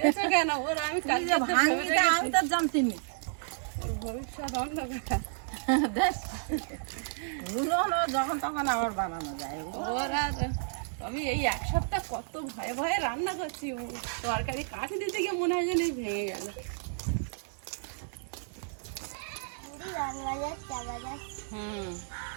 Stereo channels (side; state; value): left; silent; digital silence